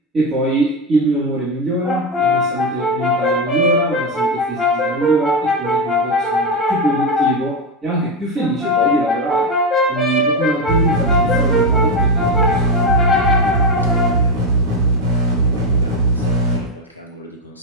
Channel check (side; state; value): both; normal; correlation 0.11